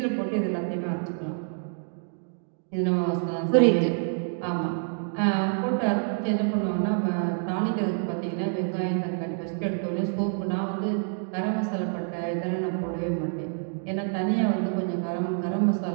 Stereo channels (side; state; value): left; silent; 57 dB below the other